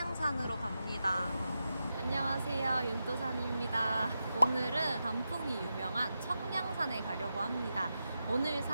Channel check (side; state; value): both; inverted; correlation -0.90